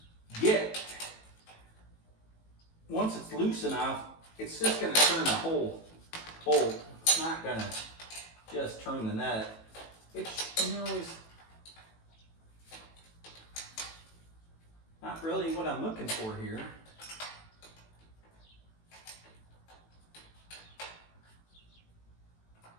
get. Once it's loose enough, it's just going to turn the whole bolt. It's not going to just turn the nut, which, you know, is not really what I'm looking for here.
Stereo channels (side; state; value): right; late; 18 ms